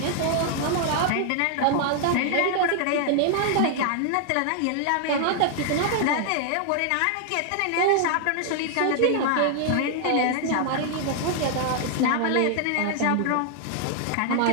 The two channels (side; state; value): both; different; correlation 0.00